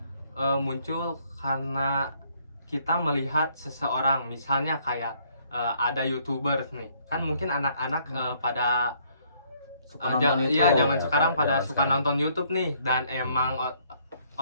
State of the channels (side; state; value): both; inverted; correlation -0.66